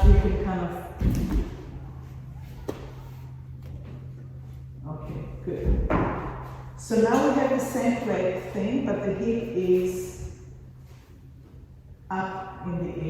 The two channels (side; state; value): both; identical; correlation 1.00